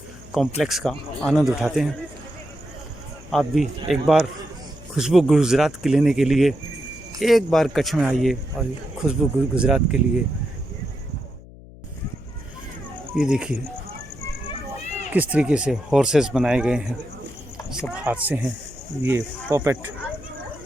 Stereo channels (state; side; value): noise; left; hum, 19 dB below the sound